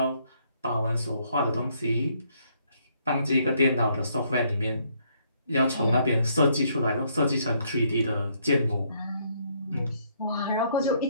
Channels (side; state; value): both; inverted; correlation -0.70